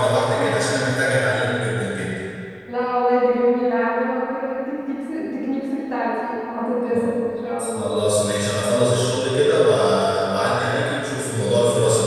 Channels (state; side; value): identical; both; correlation 1.00